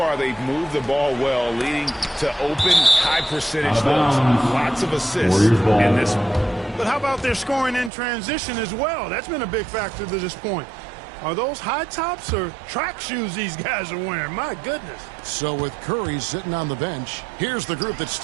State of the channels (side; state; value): left; drops out; at 7.9 s